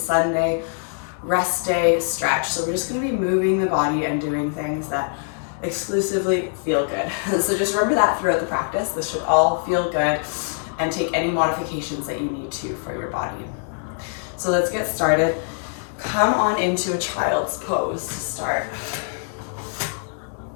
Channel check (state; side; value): silent; right; 61 dB below the other